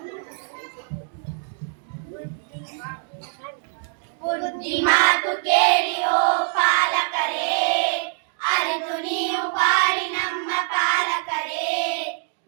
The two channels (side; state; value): left; silent; 55 dB below the other